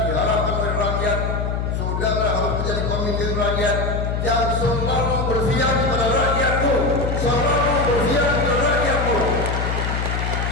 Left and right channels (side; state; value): left; noise; hum, 1 dB below the sound